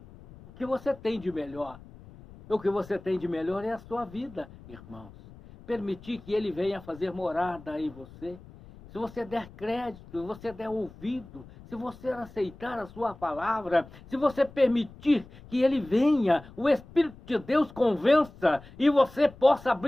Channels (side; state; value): left; noise; rumble, 20 dB below the sound